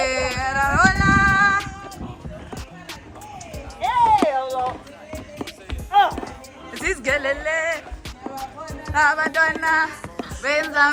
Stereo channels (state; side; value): identical; both; correlation 1.00